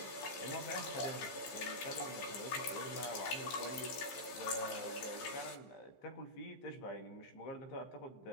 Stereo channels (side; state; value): right; late; 15 ms